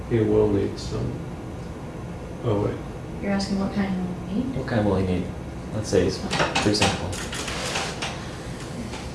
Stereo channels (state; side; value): identical; both; correlation 1.00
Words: He will need some. Oh wait. You're asking what kind of need? What kind will he need? Let's say it's pretty simple.